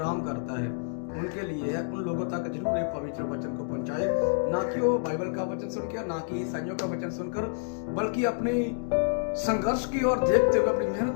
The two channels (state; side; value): silent; right; digital silence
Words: करता है, उनके लिए है। उन लोगों तक जरूर एक पवित्र वचन को पहुंचाए, ना कि वो बाइबल का वचन सुनकर, ना कि ईसाइयों का वचन सुनकर, बल्कि अपनी संघर्ष की ओर देखते हुए, अपनी